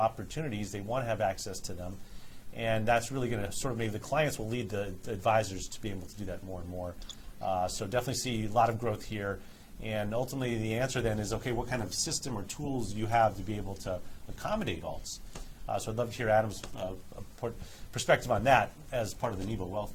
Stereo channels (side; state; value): both; identical; correlation 1.00